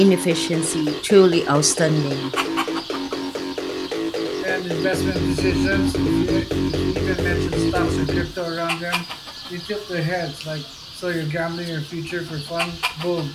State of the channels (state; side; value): identical; both; correlation 1.00